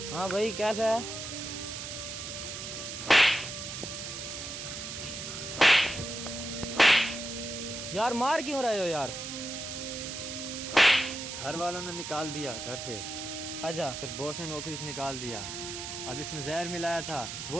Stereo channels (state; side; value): noise; right; hiss, 7 dB below the sound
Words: हाँ भाई कैसा है? यार मार क्यों रहे हो यार? घर वालों ने निकाल दिया घर से, अच्छा। फिर बॉस ने नौकरी से निकाल दिया। अब इसमें जहर मिलाया था,